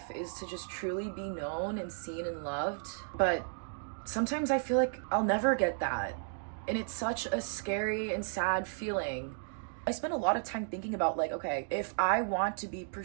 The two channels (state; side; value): silent; left; digital silence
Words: is to just truly be known and seen and loved, but sometimes I feel like I'll never get that. And it's such a scary and sad feeling. I spend a lot of time thinking about like, okay, if I want to be